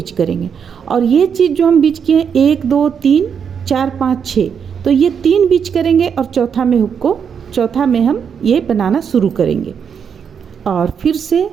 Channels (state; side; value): quieter; left; 7.1 dB